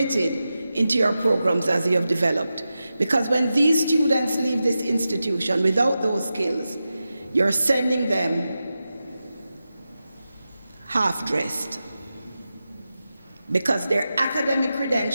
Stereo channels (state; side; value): inverted; both; correlation -0.92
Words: into your programs as you have developed. Because when these students leave this institution without those skills, you're sending them half-dressed, because their academic